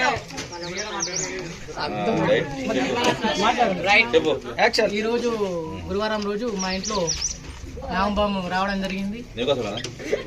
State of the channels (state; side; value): identical; both; correlation 1.00